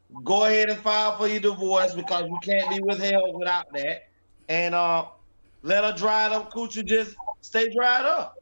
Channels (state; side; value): inverted; both; correlation -1.00